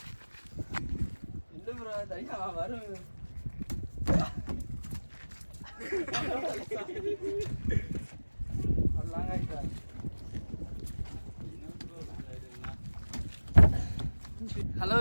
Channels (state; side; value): inverted; both; correlation -1.00